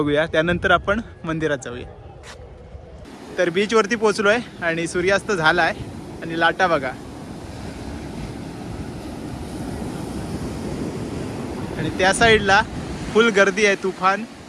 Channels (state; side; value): identical; both; correlation 1.00